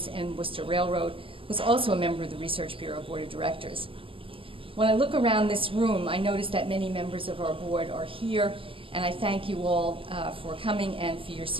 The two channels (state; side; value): late; left; 0.26 ms